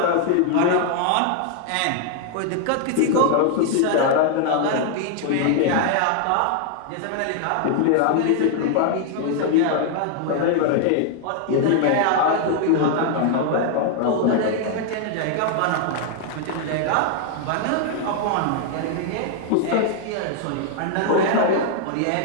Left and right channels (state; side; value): different; both; correlation 0.00